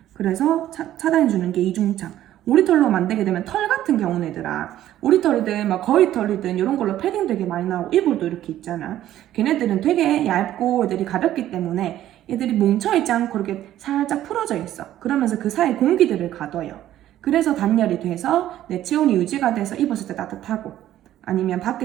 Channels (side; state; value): left; quieter; 12.7 dB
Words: 그래서 차단해주는 게 이중창. 오리털로 만들게 되면 털 같은 경우는 얘들아 오리털이든 막 거위털이든 이런 걸로 패딩 되게 많이 나오고 이불도 이렇게 있잖아. 걔네들은 되게 얇고 애들이 가볍기 때문에 얘들이 뭉쳐있지 않고 이렇게 살짝 풀어져 있어. 그러면서 그 사이 공기들을 가둬요. 그래서 단열이 돼서 내 체온이 유지가 돼서 입었을 때 따뜻하고 아니면